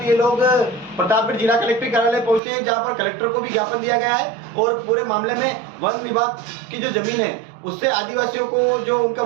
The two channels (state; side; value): drops out; left; at 2.4 s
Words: ये लोग प्रतापगढ़ जिला कलेक्टर कार्यालय पहुंचे हैं, जहाँ पर कलेक्टर को भी ज्ञापन दिया गया है और पूरे मामले में वन विभाग की जो जमीन है उससे आदिवासियों को जो उनका